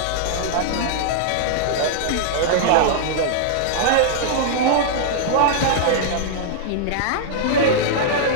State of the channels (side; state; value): both; different; correlation -0.01